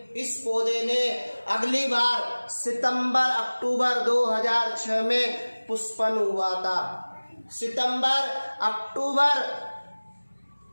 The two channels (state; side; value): inverted; both; correlation -1.00